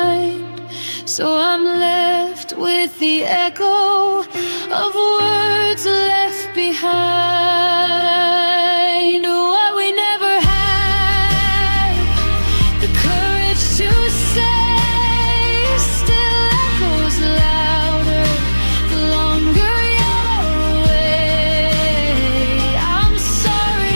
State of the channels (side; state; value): both; inverted; correlation -1.00